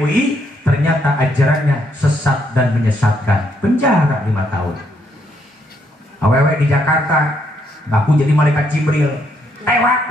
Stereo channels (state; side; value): normal; both; correlation 0.74